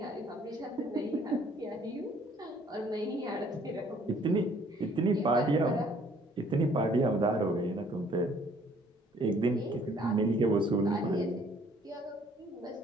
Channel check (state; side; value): normal; both; correlation 0.60